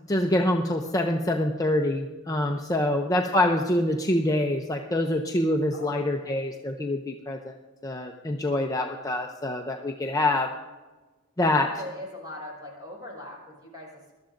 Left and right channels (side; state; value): both; normal; correlation 0.63